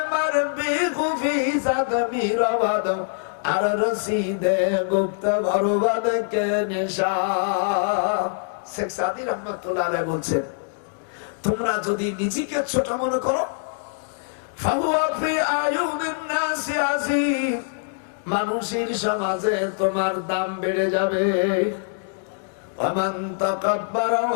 মারবি খুফি সাদমি রওয়াদ আর রসিদে গুপ্ত বরবাদ কে নিশা। শেখ সাদি রহমাতুল্লাহ আলাইহি বলছেন, তোমরা যদি নিজেকে ছোট মনে করো, ফাহুয়া ফি আয়ুনিন নাসি আযীম, মানুষের সমাজে তোমার দাম বেড়ে যাবে। ওয়ামান তাকাব্বারা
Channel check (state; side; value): silent; right; digital silence